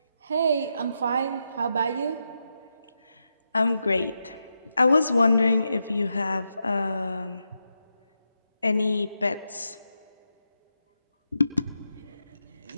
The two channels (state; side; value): inverted; both; correlation -0.86